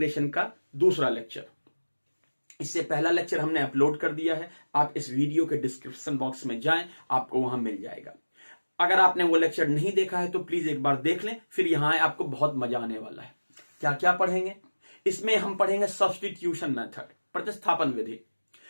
का दूसरा लेक्चर। इससे पहला लेक्चर हमने अपलोड कर दिया है। आप इस वीडियो के डिस्क्रिप्शन बॉक्स में जाएं, आपको वहां मिल जाएगा। अगर आपने वो लेक्चर नहीं देखा है तो प्लीज एक बार देख लें, फिर यहां आए, आपको बहुत मजा आने वाला है। क्या क्या पढ़ेंगे इसमें? हम पढ़ेंगे सब्स्टिट्यूशन मेथड, प्रतिस्थापन विधि,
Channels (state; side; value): inverted; both; correlation -1.00